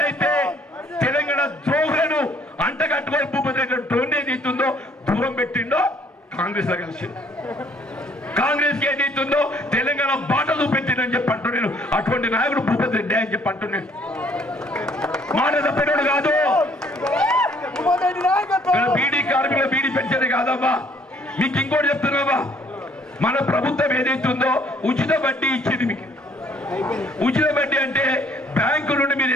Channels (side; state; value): both; normal; correlation 0.61